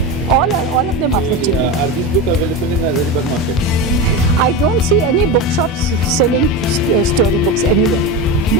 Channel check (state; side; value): normal; both; correlation 0.20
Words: All of them are for children. Are these books available in the Hazaribagh market? I don't see any bookshops selling storybooks anywhere.